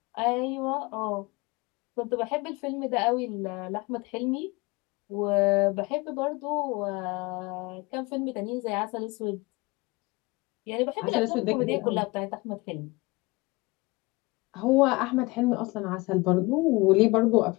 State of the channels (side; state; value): right; quieter; 24.0 dB